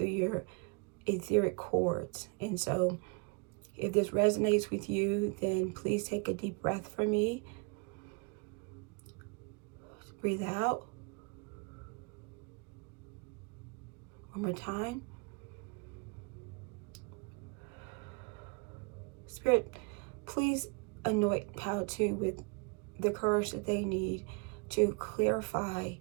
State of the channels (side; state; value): left; quieter; 32.8 dB